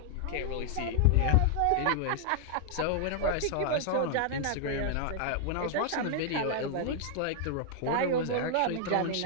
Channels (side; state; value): both; different; correlation 0.00